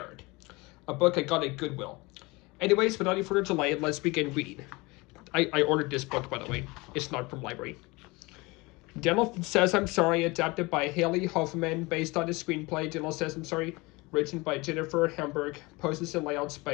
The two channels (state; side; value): quieter; right; 24.2 dB